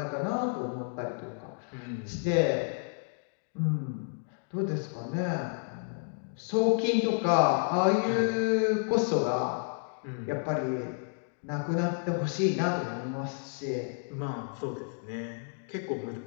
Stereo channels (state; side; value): silent; right; 57 dB below the other